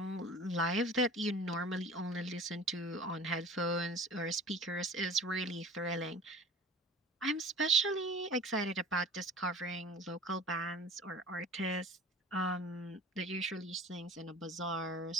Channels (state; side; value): normal; both; correlation 0.42